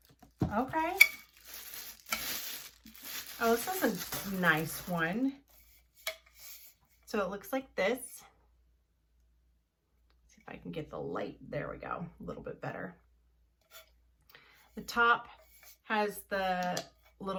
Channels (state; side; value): identical; both; correlation 1.00